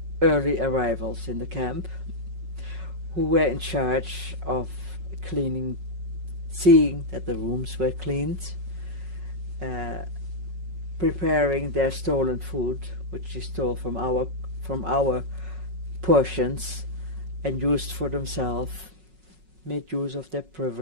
early arrivals in the camp, who were in charge of cleaning, seeing that the rooms were cleaned, preparing their stolen food, which they stole from our portions and used for themselves, made use of their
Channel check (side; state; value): left; late; 5.4 ms